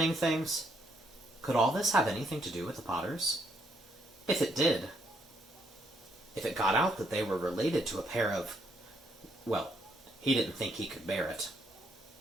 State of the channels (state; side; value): normal; both; correlation 0.72